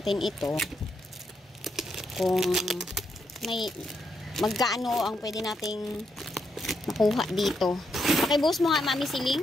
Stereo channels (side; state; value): both; normal; correlation 0.80